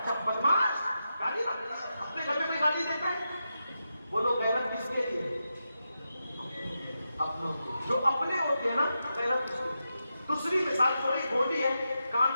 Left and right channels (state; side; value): inverted; both; correlation -0.88